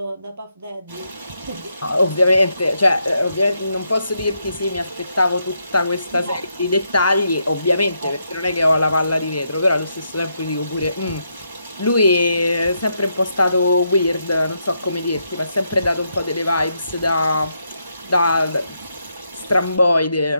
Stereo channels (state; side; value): inverted; both; correlation -0.79